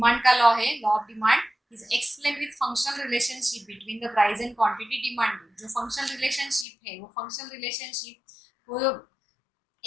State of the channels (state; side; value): drops out; right; at 6.7 s